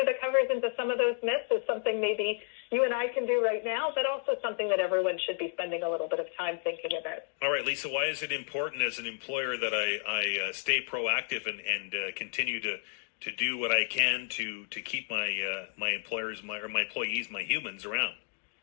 the covers into some of those myths is something maybe you and I can do right now, but also something that everyone should be spending a little bit of time thinking about. All right, Lisa, why is it important as an employer that I stay proactive and continue to do what I can to keep my employers, my employees, my humans around?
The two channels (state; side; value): silent; right; 57 dB below the other